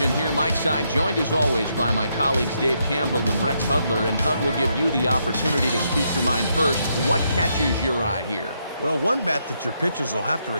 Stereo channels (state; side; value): inverted; both; correlation -0.78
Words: here, Mike Side, joined as always by my colleagues Dave Campbell and Rex Hudler. And Hud will give you the opportunity to speak your mind first. What catches your eye here? Well, one bat that your pitchers will have to